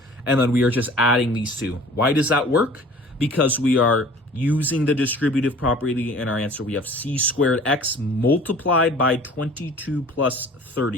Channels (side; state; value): both; normal; correlation 0.46